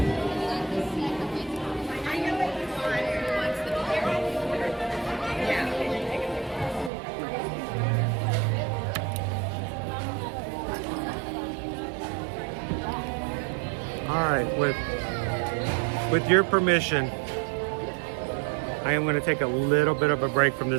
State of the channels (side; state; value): left; drops out; at 6.9 s